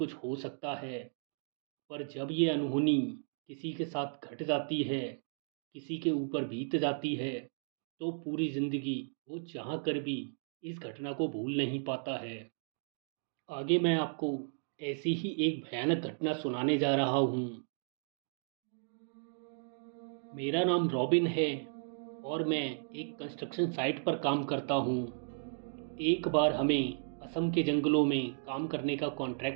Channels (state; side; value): silent; left; digital silence